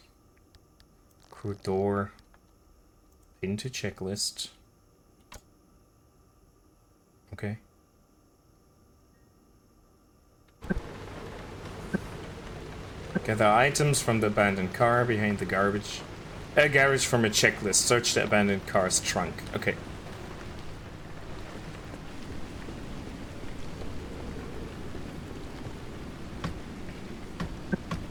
Crew door. Into checklist. Okay. Gather items from the abandoned car behind the garbage. Garage from a checklist. Search the abandoned car's trunk. Okay.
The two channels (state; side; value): identical; both; correlation 1.00